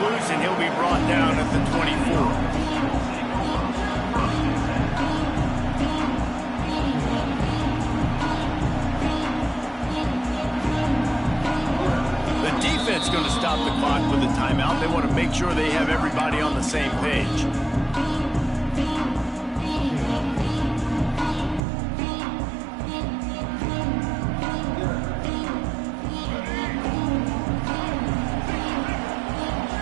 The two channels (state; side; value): drops out; left; at 21.6 s